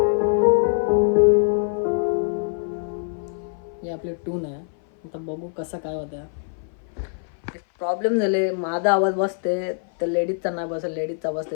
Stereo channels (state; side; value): silent; right; 57 dB below the other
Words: ही आपली टून आहे. आता बघू कसं काय होतं. प्रॉब्लेम झाले, माझा आवाज बसते तर लेडीजचा नाही बसत, लेडीजचा